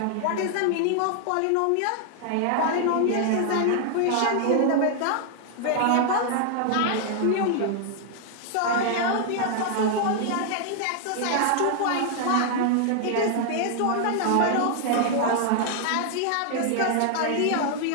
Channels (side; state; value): both; different; correlation 0.00